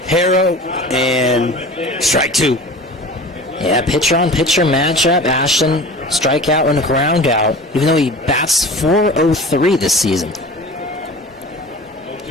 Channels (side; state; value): both; normal; correlation 0.38